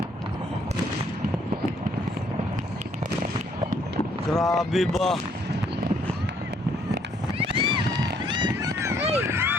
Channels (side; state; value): both; normal; correlation 0.65